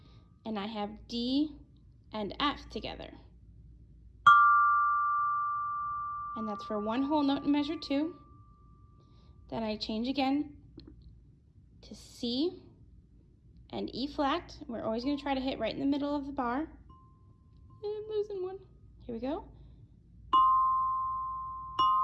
and I have D and F together. And that's for 1 whole note in measure 2. Then I change again to C and E flat. We're always going to try to hit right in the middle of the bar. I'm losing one. Here we go.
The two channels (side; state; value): both; identical; correlation 1.00